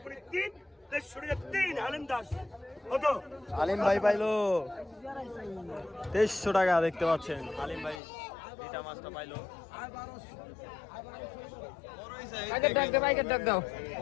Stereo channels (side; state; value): right; drops out; at 8.0 s